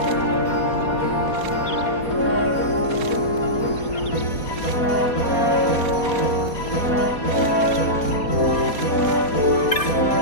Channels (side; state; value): right; late; 4.2 ms